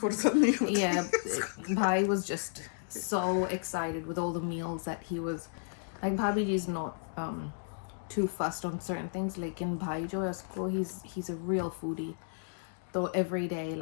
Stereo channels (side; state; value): right; silent; digital silence